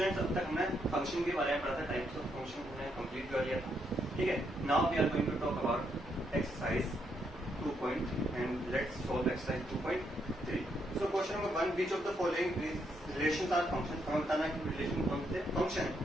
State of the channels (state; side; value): normal; both; correlation 0.77